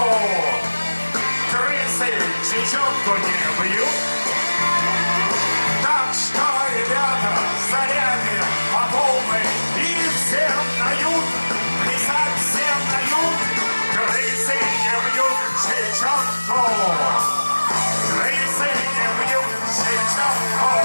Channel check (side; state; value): both; inverted; correlation -1.00